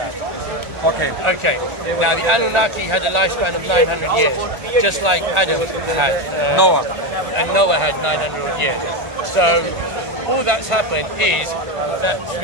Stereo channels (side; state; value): left; late; 1.4 ms